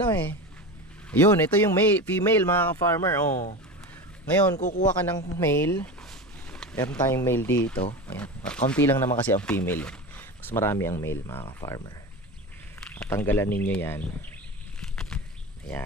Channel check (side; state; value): both; normal; correlation 0.26